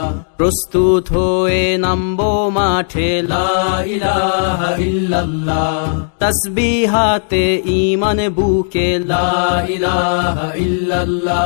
প্রস্তুত হয়ে নামবো মাঠে লা ইলাহা ইল্লাল্লাহ, তাসবিহাতে ঈমান বুকে লা ইলাহা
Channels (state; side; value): silent; right; digital silence